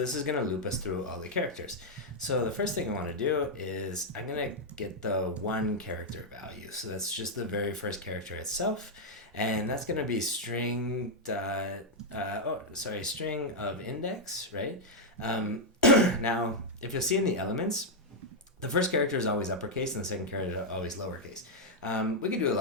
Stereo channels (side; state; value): both; normal; correlation -0.02